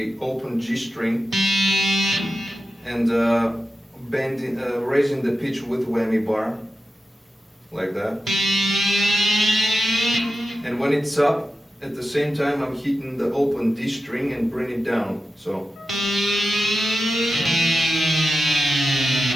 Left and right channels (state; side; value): normal; both; correlation 0.91